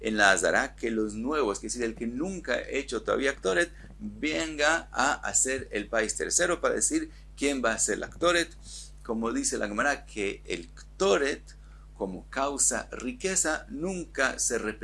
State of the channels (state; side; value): identical; both; correlation 1.00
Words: en la Azara que los nuevos, que es decir, el que nunca ha hecho todavía Ktoret, venga a hacer el país tercero para decir quién va a hacer la Ktoret. Como dice la Gemara, que el Ktoret, como causa riqueza, nunca se